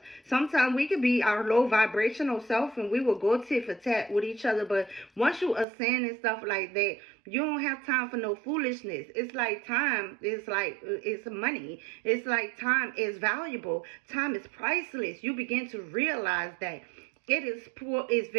sometimes we could be our low vibrational self and we will go tit for tat with each other. But once you ascend and stuff like that, you don't have time for no foolishness. It's like time is like, it's money. It's like time is valuable. Time is priceless. You begin to realize that it's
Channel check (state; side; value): drops out; left; at 5.7 s